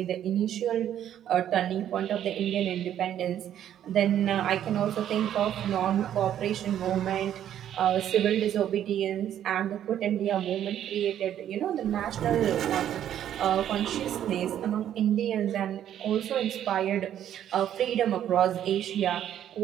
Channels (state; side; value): quieter; left; 10.6 dB